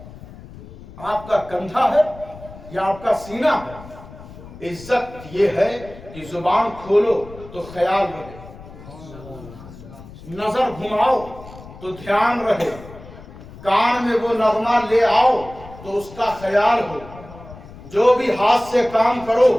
آپ کا کندھا ہے یا آپ کا سینہ ہے؟ عزت یہ ہے کہ زبان کھولو تو خیال رہے، نظر گھماؤ تو دھیان رہے، کان میں وہ نغمہ لے آؤ تو اس کا خیال ہو، جو بھی ہاتھ سے کام کرو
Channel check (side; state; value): left; noise; rumble, 17 dB below the sound